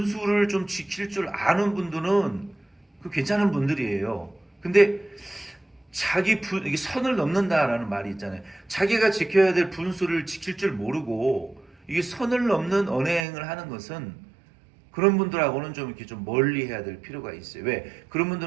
좀 지킬 줄 아는 분들은 그 괜찮은 분들이에요. 근데 이게 선을 넘는다라는 말이 있잖아요. 자기가 지켜야 될 분수를 지킬 줄 모르고 이게 선을 넘는 언행을 하는 것은 그런 분들하고는 좀 이렇게 좀 멀리 해야 될 필요가 있어요. 왜? 그런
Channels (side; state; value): left; drops out; at 13.2 s